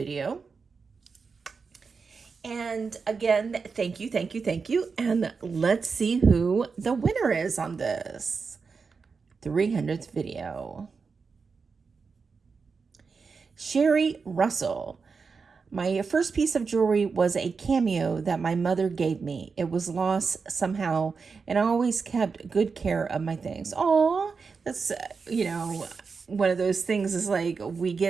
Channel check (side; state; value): left; quieter; 5.1 dB